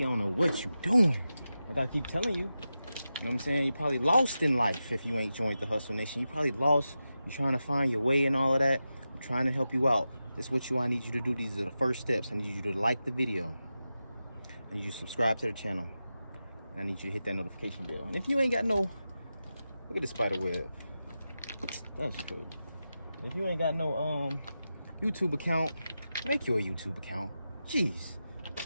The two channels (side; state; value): both; inverted; correlation -0.91